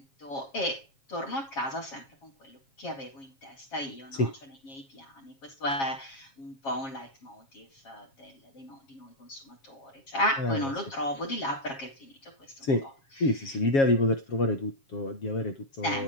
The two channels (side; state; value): right; late; 7.4 ms